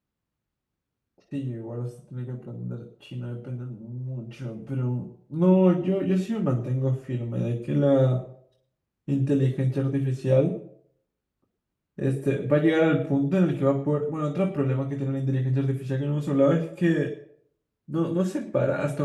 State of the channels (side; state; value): both; identical; correlation 1.00